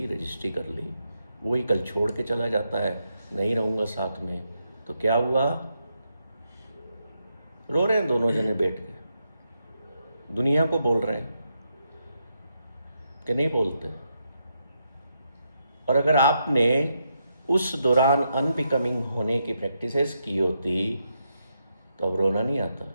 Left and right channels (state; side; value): inverted; both; correlation -0.81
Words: रजिस्ट्री कर ली। वही कल छोड़ के चला जाता है, नहीं रहूँगा साथ में, तो क्या हुआ? रो रहे हैं दोनों जने बैठ के, दुनिया को बोल रहे हैं कि नहीं बोलते। और अगर आपने उस दौरान अनबिकमिंग होने की प्रैक्टिसेस की होती तो अब रोना नहीं आता।